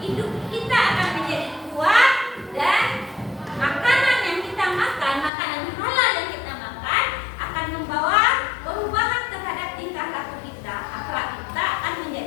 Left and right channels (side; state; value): right; drops out; at 5.3 s